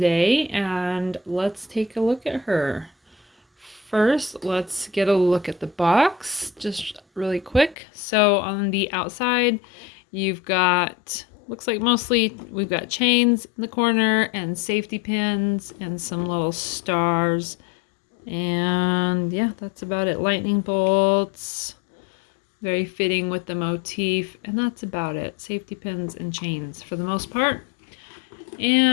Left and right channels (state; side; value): drops out; right; at 7.8 s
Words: and let's take a look at her. First, let's get a look at the box just really quick. So on the outside, you've got, looks like mostly we've got chains in the corner and safety pins and some little stars. And yeah, that's about it. Lightning bolts, very fitting with the motif. And that's about it. Safety pins and chains for the most part.